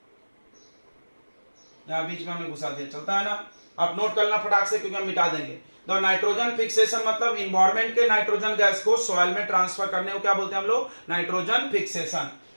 यहां बीच में हमने घुसा दिया, चलता है ना, आप नोट करना फटाक से क्योंकि हम मिटा देंगे। तो नाइट्रोजन फिक्सेशन मतलब इन्वायरमेंट के नाइट्रोजन गैस को सॉइल में ट्रांसफर करने को क्या बोलते हैं हम लोग, नाइट्रोजन फिक्सेशन।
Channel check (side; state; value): both; inverted; correlation -1.00